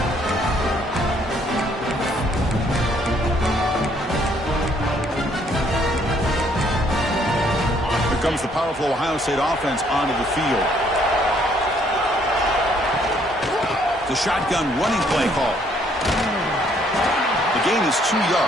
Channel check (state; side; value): normal; both; correlation 0.66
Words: Here comes the powerful Ohio State offense onto the field. The shotgun running play call. The gain is 2